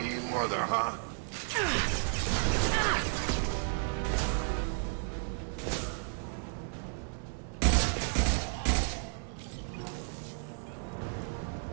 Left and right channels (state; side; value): silent; left; 56 dB below the other